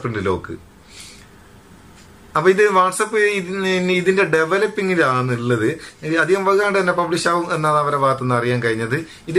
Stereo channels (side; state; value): both; identical; correlation 1.00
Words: പ്രിന്റ് ലോക്ക്. അപ്പൊ ഇത് വാട്സപ്പ് ഇതിന്റെ ഡെവലപ്പിംഗിലാണുള്ളത്. അധികം വൈകാണ്ട് തന്നെ പബ്ലിഷ് ആവും എന്നാണ് അവരുടെ ഭാഗത്തുനിന്ന് അറിയാൻ കഴിഞ്ഞത്.